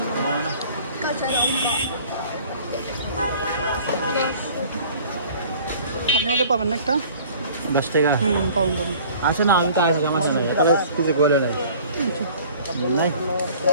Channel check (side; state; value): both; inverted; correlation -0.49